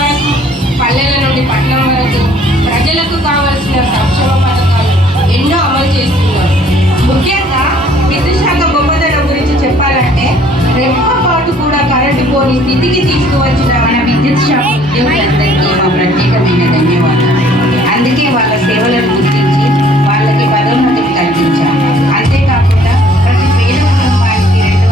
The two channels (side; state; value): both; normal; correlation 0.58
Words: వరకు, పల్లెల నుండి పట్టణం వరకు ప్రజలకు కావలసిన సంక్షేమ పథకాలు ఎన్నో అమలు చేస్తున్నారు. ముఖ్యంగా విద్యుత్ శాఖ గొప్పతనం గురించి చెప్పాలంటే రెప్పపాటు కూడా కరెంటు పోని స్థితికి తీసుకువచ్చిన మన విద్యుత్ శాఖ ఉద్యోగులందరికీ మా ప్రత్యేకమైన ధన్యవాదాలు. అందుకే వాళ్ళ సేవలను గుర్తించి వాళ్ళకి పదోన్నతిని కల్పించాము. అంతేకాకుండా ప్రతి పేద కుటుంబానికి